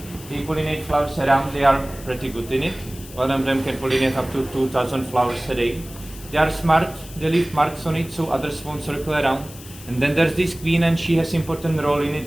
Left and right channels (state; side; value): noise; left; hiss, 17 dB below the sound